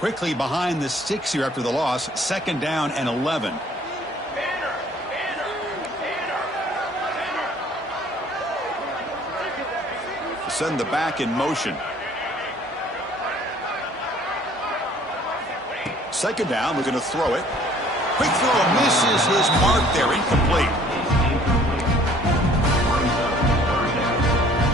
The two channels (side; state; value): both; normal; correlation 0.56